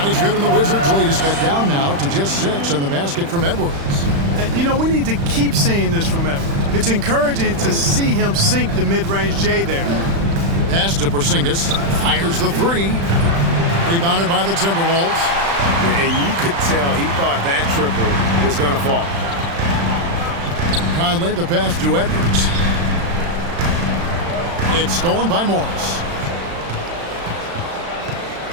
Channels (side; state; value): left; late; 35 ms